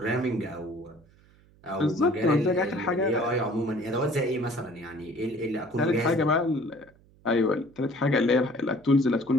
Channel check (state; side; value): noise; right; hum, 29 dB below the sound